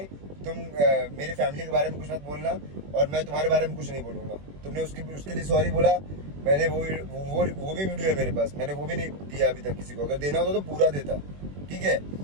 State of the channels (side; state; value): left; late; 21 ms